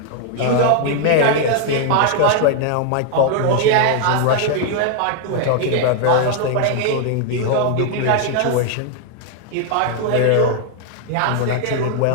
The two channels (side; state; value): both; different; correlation 0.00